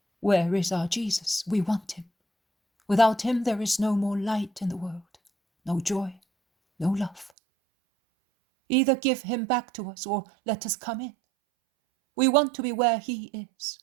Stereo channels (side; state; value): left; drops out; at 7.3 s